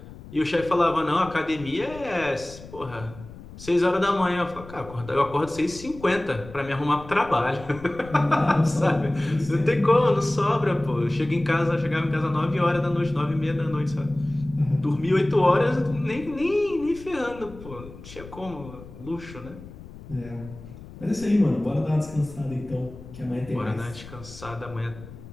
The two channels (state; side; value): noise; left; rumble, 16 dB below the sound